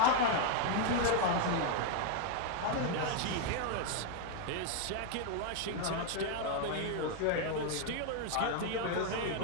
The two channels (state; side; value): different; both; correlation 0.01